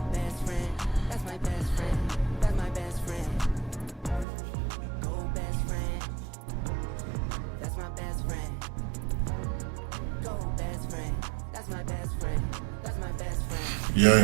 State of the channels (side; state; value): left; drops out; at 4.2 s